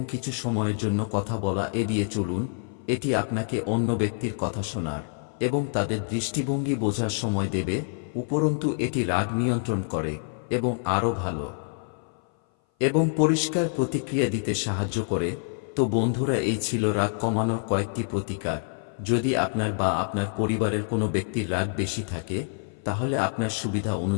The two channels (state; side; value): silent; right; 57 dB below the other